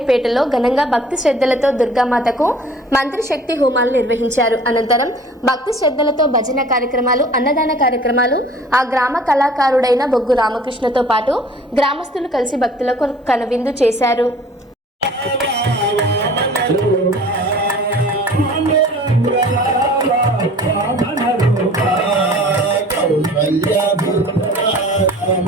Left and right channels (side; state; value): both; normal; correlation 0.48